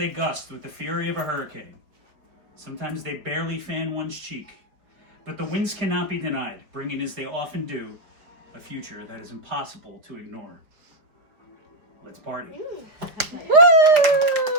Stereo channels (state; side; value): late; left; 4.5 ms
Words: gust with the fury of a hurricane. Sometimes they barely fan one's cheek. But the winds cannot be denied, bringing, as they often do, a future that is impossible to ignore. Let's party. Woo! Well